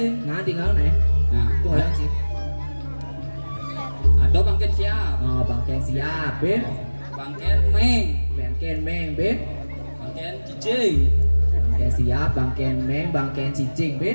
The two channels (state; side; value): inverted; both; correlation -1.00